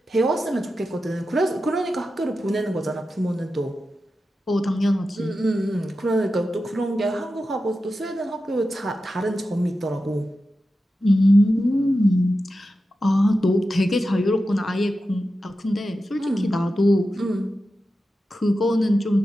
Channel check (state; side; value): normal; both; correlation 0.91